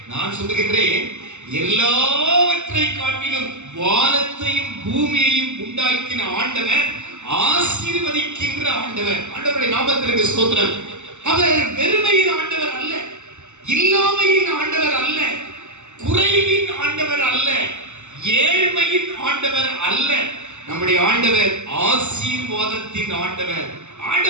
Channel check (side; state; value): left; late; 0.83 ms